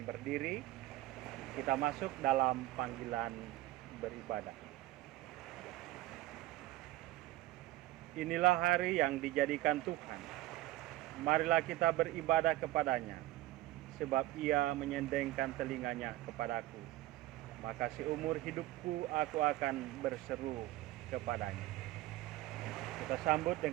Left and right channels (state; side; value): quieter; left; 16.5 dB